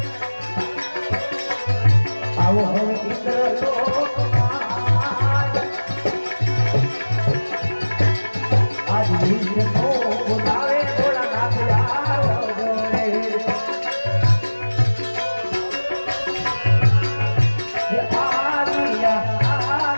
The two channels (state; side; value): inverted; both; correlation -1.00